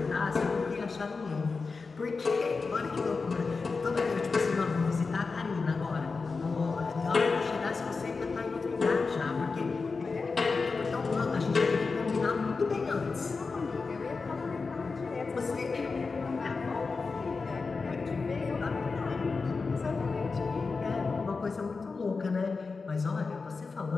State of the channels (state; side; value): quieter; right; 4.4 dB